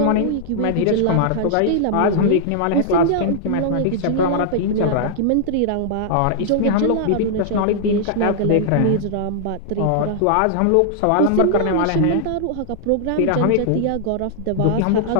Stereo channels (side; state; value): both; different; correlation -0.01